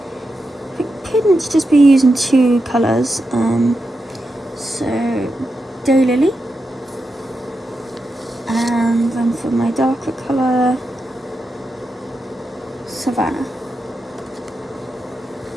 I couldn't just be using two colours. So Daylily, and then for my darker colour, Savannah.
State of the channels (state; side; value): normal; both; correlation 0.87